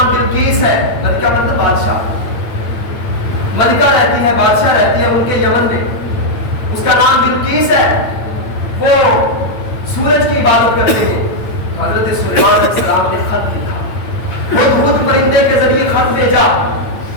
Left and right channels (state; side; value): late; right; 9.0 ms